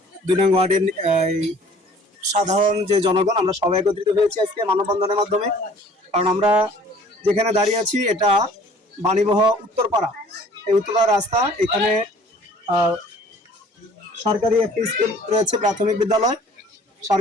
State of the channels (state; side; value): normal; both; correlation 0.52